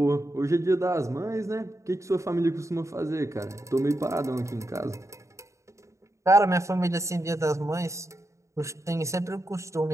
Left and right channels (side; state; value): left; late; 0.14 ms